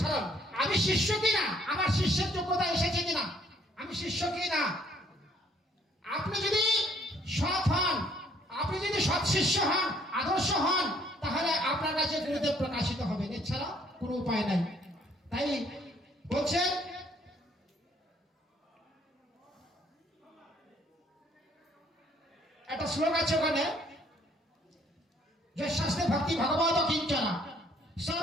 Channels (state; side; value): normal; both; correlation 0.63